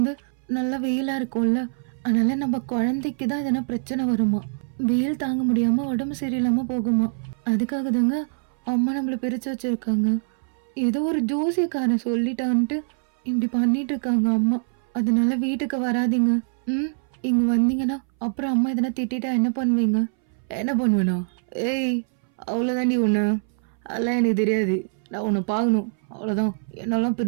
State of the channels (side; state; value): left; silent; 61 dB below the other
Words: நல்லா வெயிலா இருக்கும்ல, அதனால நம்ம குழந்தைக்கு தான் எதனா பிரச்சனை வருமா. வெயில் தாங்க முடியாம உடம்பு சரியில்லாம போகுமா. அதுக்காக தாங்க அம்மா நம்மள பிரிச்சு வச்சிருக்காங்க. ஏதோ ஒரு ஜோசியக்காரன் சொல்லிட்டான்ட்டு இப்படி பண்ணிட்டு இருக்காங்க அம்மா. அதனால வீட்டுக்கு வராதீங்க. இங்க வந்தீங்கன்னா அப்புறம் அம்மா எதனா திட்டா என்ன பண்ணுவீங்க? என்ன பண்ணுவேனா? ஏய், அவ்வளோதாண்டி ஒன்று. அதெல்லாம் எனக்கு தெரியாது. நான் உன்னை பார்க்கணும், அவ்வளோதான். என்னாலாம்